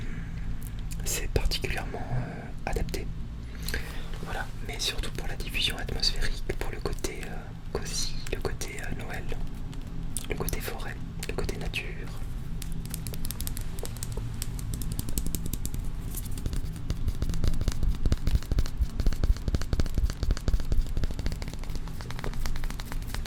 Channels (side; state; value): both; identical; correlation 1.00